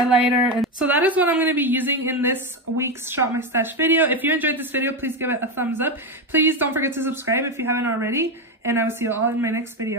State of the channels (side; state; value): both; normal; correlation 0.12